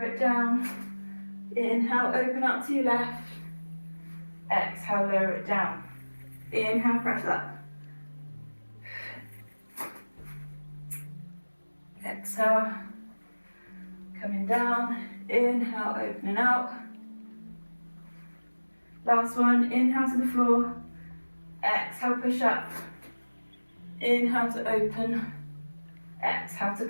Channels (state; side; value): inverted; both; correlation -1.00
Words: it down, inhale, open out to your left, exhale, lower it down, inhale, press up, exhale, coming down, inhale, opening out. Last one, inhale to the floor, exhale, push up, inhale to open, exhale to